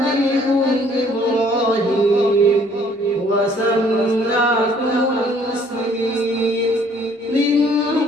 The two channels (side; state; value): both; normal; correlation 0.60